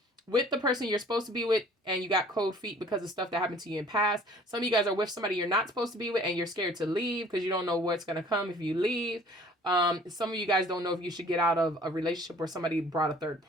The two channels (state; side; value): normal; both; correlation 0.52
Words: with the person you're supposed to be with and you got cold feet because of stuff that happened to you in past. Some of you guys are with somebody you're not supposed to be with and you're scared to leave because you don't know what's going to come if you leave. Some of you guys don't know if you should get out of a relationship where somebody brought a third